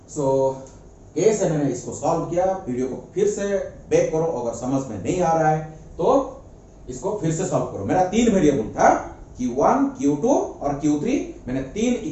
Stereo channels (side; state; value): both; identical; correlation 1.00